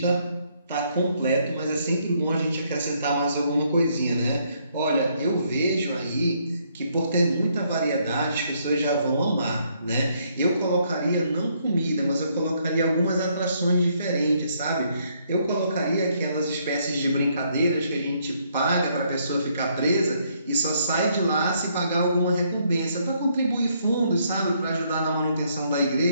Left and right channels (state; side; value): inverted; both; correlation -0.71